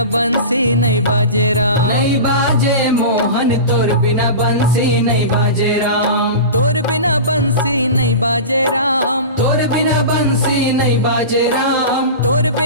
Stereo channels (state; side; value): inverted; both; correlation -0.30